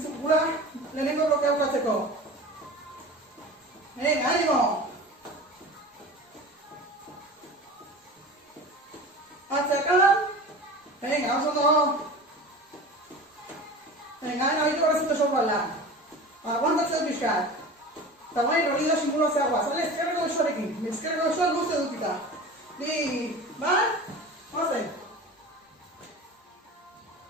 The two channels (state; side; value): normal; both; correlation 0.35